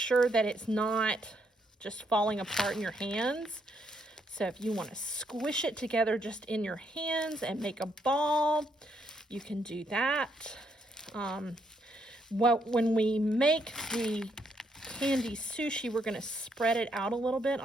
that it's not just falling apart in your hands. So if you want to squish it together just in your hands and make a ball, you can do that. When we make the candy sushi, we're going to spread it out a little bit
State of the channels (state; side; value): normal; both; correlation 0.75